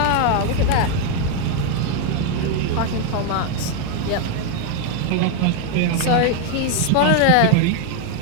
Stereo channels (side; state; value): both; different; correlation 0.01